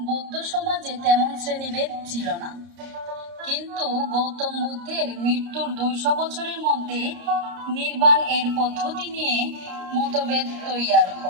বৌদ্ধ সমাজে তেমন শ্রেণীভেদ ছিল না, কিন্তু গৌতম বুদ্ধের মৃত্যুর ২০০ বছরের মধ্যে নির্বাণ এর পদ্ধতি নিয়ে মতভেদ তৈয়ার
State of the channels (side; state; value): left; late; 30 ms